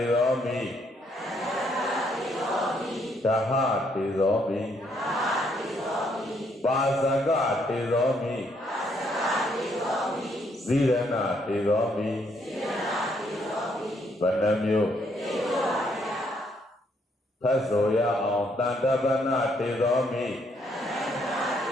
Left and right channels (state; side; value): normal; both; correlation 0.71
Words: ရောမိဓဟတေရောမိပါဇကတေရောမိဇိရဏတေရောမိ ဘယ်နှမျိုးဖတ်ဆိုရအောင်တန်တပနာတေသောမိ